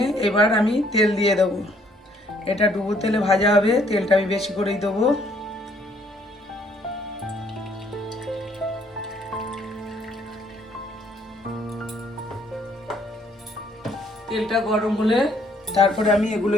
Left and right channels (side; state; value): both; normal; correlation 0.65